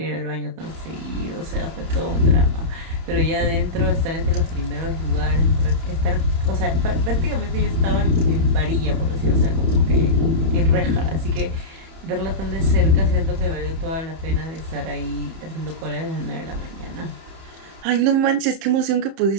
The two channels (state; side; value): late; left; 31 ms